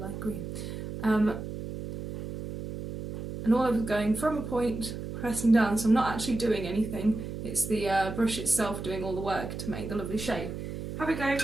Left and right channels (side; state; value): right; noise; hum, 7 dB below the sound